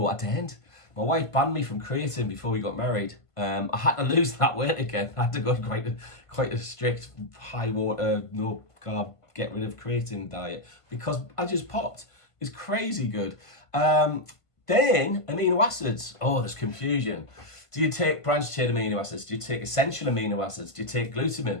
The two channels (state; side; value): late; right; 1.5 ms